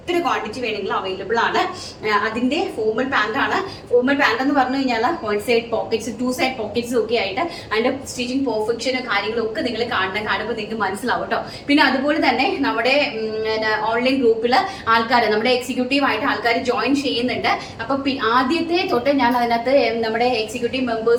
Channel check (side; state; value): both; identical; correlation 1.00